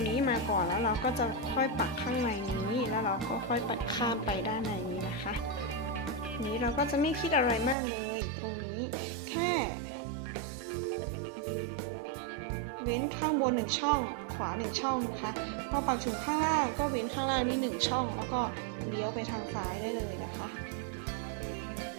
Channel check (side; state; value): left; drops out; at 7.8 s